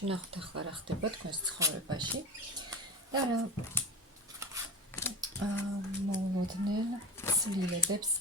ვნახოთ ახლა რა ხდება თქვენს ცხოვრებაში და რა მოულოდნელ ცვლილებებს,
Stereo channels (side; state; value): both; normal; correlation 0.31